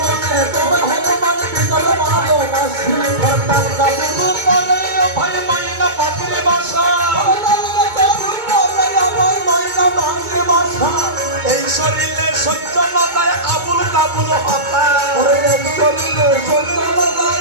তোমায় হনুমান ভিতর ভালোবাসি তার কাবুল করে ভাই মাইনা পাখির বাসা এই শরীরে সহ্য না যায় আবুল কাবুল হতা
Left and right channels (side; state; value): left; late; 2.2 ms